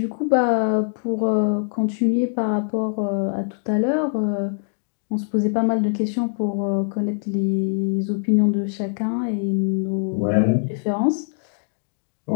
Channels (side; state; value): right; silent; digital silence